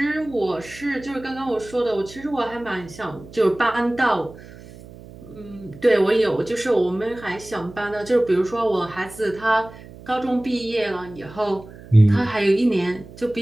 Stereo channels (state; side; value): noise; right; hum, 18 dB below the sound